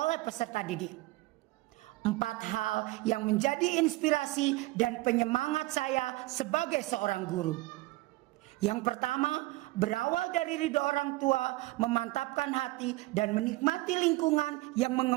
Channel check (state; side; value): quieter; left; 20.4 dB